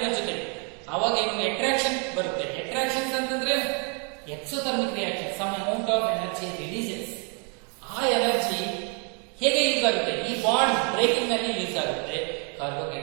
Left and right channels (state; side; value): quieter; left; 37.6 dB